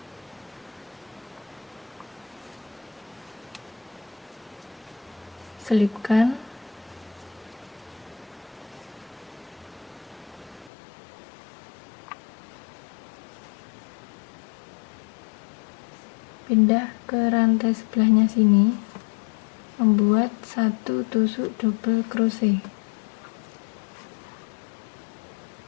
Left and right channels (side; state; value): right; drops out; at 10.7 s